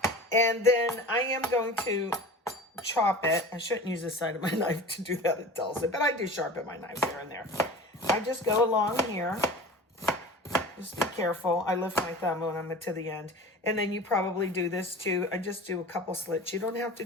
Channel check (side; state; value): both; normal; correlation 0.37